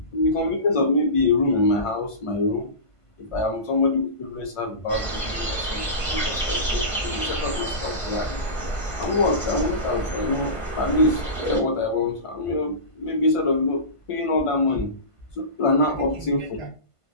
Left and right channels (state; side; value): late; right; 1.5 ms